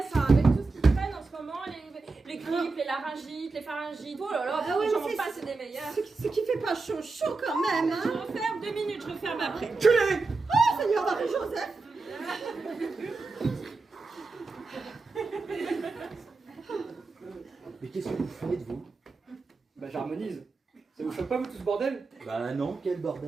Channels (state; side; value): quieter; left; 3.8 dB